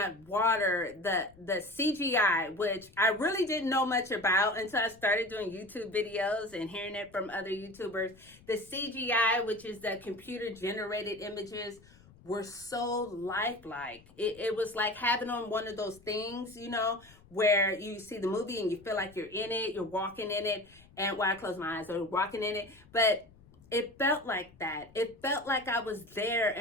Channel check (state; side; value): noise; left; rumble, 26 dB below the sound